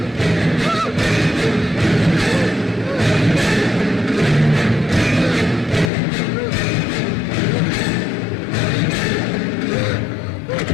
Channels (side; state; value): right; drops out; at 5.9 s